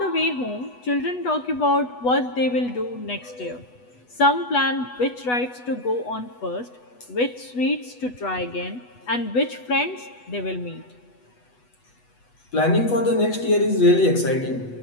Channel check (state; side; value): late; right; 8.1 ms